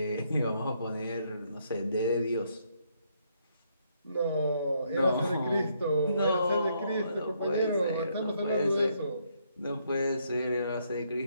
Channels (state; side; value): inverted; both; correlation -0.73